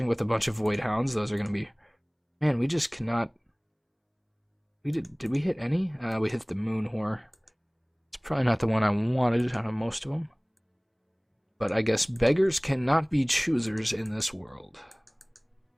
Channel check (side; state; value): both; identical; correlation 1.00